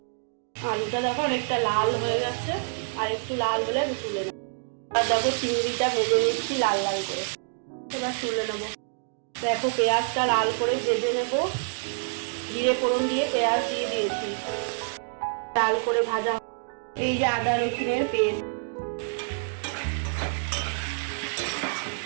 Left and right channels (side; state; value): left; silent; digital silence